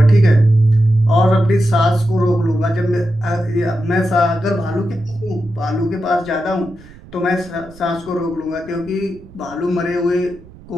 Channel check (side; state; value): right; noise; rumble, 21 dB below the sound